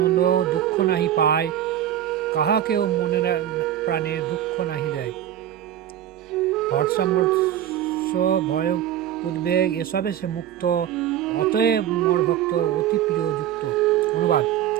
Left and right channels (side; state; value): left; quieter; 11.1 dB